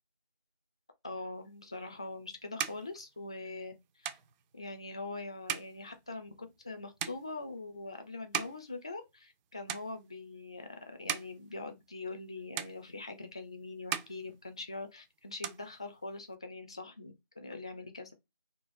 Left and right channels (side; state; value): both; inverted; correlation -0.40